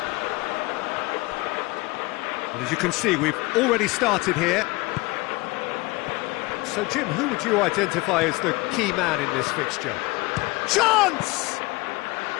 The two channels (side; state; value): right; quieter; 22.8 dB